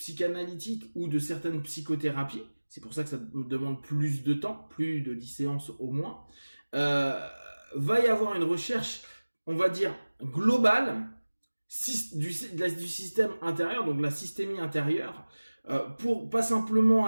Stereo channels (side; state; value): both; inverted; correlation -1.00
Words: ou de certaines psychothérapies, c'est pour ça que ça demande plus de temps, plus de 10 séances au moins, va y avoir une recherche, on va dire, globale du système intérieur, donc la systémie intérieure, pour pas simplement